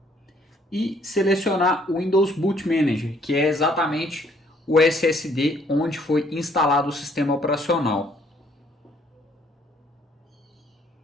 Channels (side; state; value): both; normal; correlation 0.64